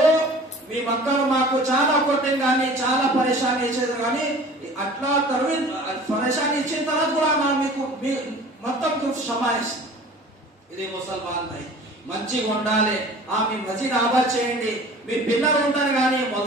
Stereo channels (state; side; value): normal; both; correlation 0.44